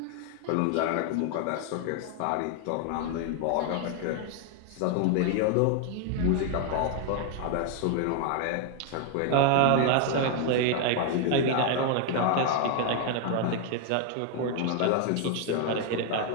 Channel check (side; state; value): both; different; correlation 0.00